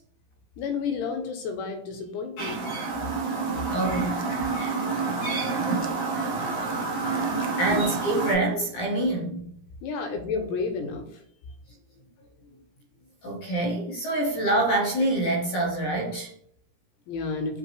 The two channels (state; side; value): late; right; 17 ms